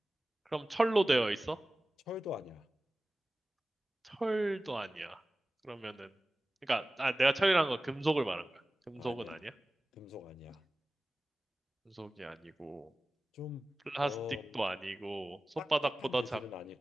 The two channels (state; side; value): normal; both; correlation 0.97